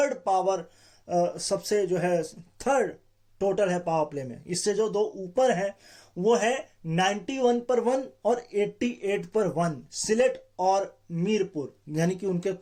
पावर, सबसे जो है थर्ड टोटल है पावर प्ले में। इससे जो दो ऊपर है वो है 91 पर 1 और 88 पर 1, सिलेट और मीरपुर, यानी कि उनके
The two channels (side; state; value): both; identical; correlation 1.00